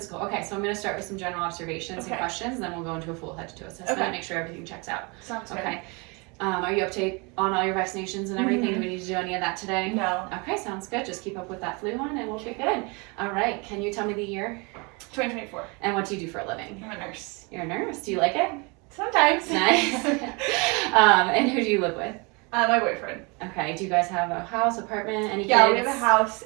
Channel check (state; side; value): quieter; left; 29.8 dB